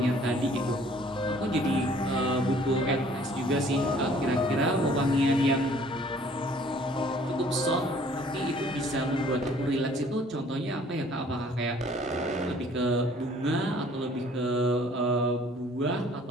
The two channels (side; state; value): both; normal; correlation 0.56